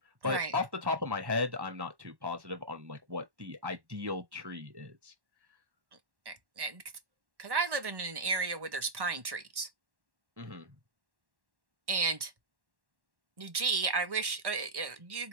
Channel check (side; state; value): left; late; 1.1 ms